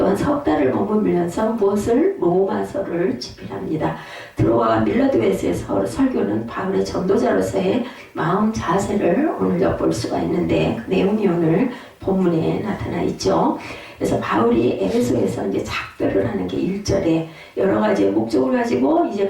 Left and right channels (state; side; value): identical; both; correlation 1.00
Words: 석 달을 머물면서 무엇을? 로마서를 집필합니다. 드로아와 밀라도에서의 설교는 바울의 전도자로서의 마음 자세를 오늘 엿볼 수가 있는데 그 내용이 오늘 본문에 나타나 있죠. 그래서 바울이 에베소에서 이제 작별을 하는 게 1절에 여러 가지의 목적을 가지고 이제